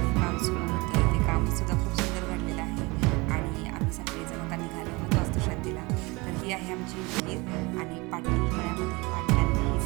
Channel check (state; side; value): quieter; left; 25.1 dB